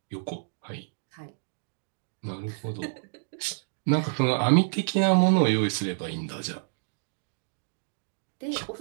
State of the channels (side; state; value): left; silent; digital silence